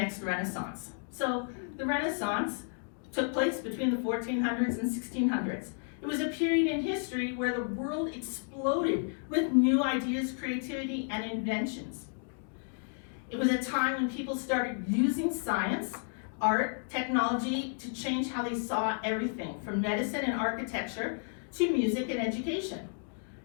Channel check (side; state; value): right; silent; 56 dB below the other